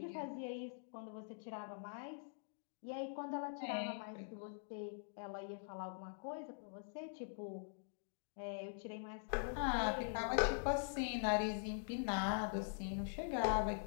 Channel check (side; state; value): right; silent; digital silence